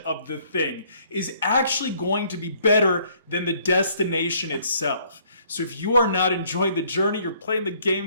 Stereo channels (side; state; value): both; inverted; correlation -0.63